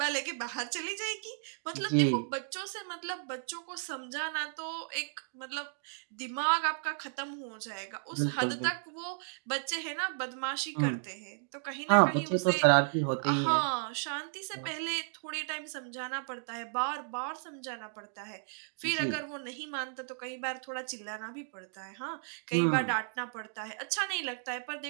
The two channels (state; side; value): silent; left; digital silence